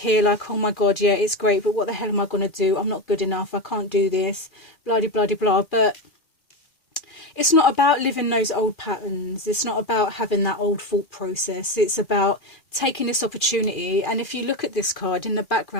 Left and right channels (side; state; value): right; late; 2.4 ms